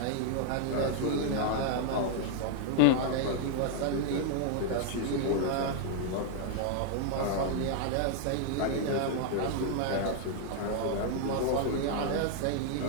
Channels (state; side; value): different; both; correlation 0.00